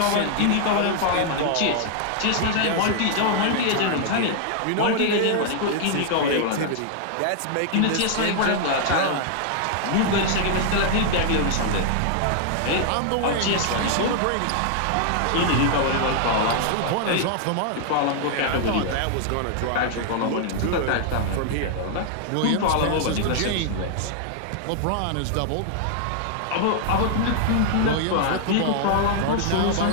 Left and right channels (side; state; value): both; different; correlation 0.00